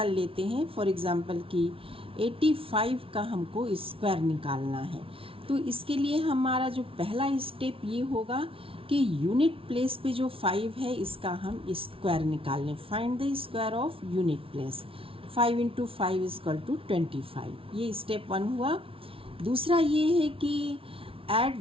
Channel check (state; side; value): late; left; 0.26 ms